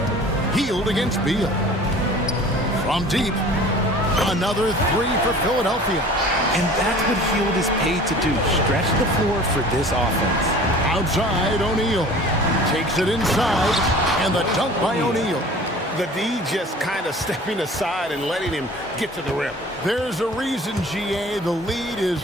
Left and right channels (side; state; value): both; normal; correlation 0.45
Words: Healed against Beal. From deep. Another 3 for Philadelphia. And that's what Hield is paid to do. Stretch the floor for this offense. Outside, O'Neal. Takes it inside. And the dunk by O'Neal. The D just kind of stepping aside and letting him get to the rim. There's a reason, GA. The lead is